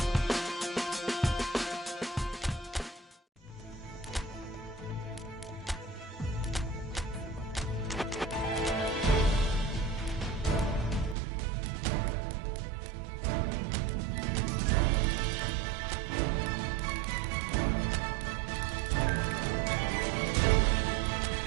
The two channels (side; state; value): left; drops out; at 11.2 s